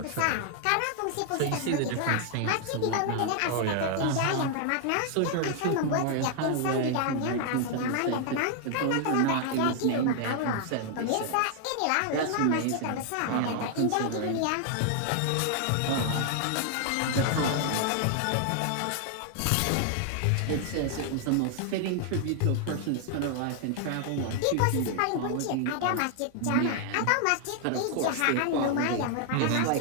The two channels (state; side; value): different; both; correlation 0.00